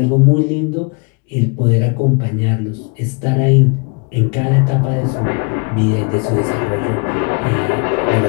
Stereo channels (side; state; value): right; quieter; 33.9 dB